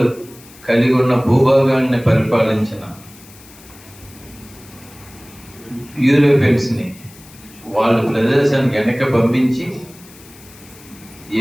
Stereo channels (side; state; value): left; noise; hiss, 22 dB below the sound